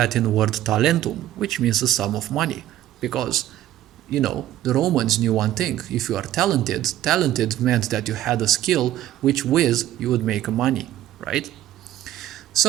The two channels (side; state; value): left; quieter; 13.1 dB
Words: word talentum, which means the sum of money, because the Romans knew one thing: if you are talented, talented meant that you had a skill which with you would make money, right?